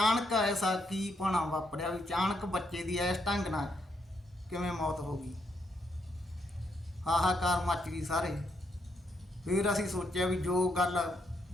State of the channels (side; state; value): both; normal; correlation 0.77